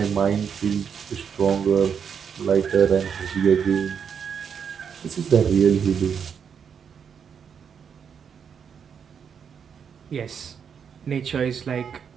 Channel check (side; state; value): left; quieter; 7.2 dB